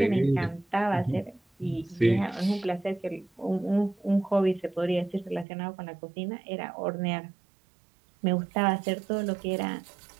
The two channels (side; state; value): left; drops out; at 5.5 s